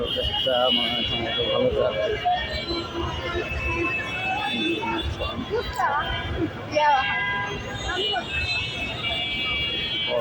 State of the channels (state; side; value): identical; both; correlation 1.00